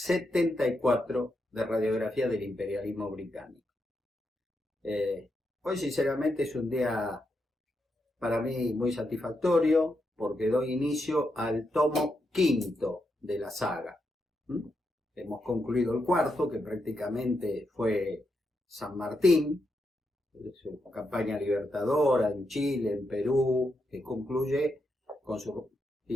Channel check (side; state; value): both; normal; correlation 0.83